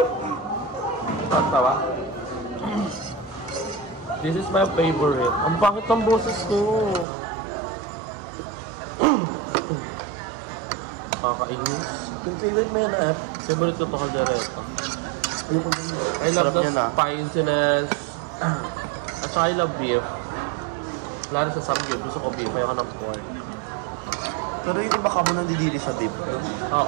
Tawa. This is my favorite. Ang pangit ng boses ko. Kakainis. Yung favorite mo yan Favorite ko ito kaldereta. I love the spiciness. At saka I love beef. Lalo sa samgyup, gusto ko beef, ayoko ng pork. Pero yung iba ka mo nandidili sa beef.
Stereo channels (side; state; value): left; drops out; at 7.1 s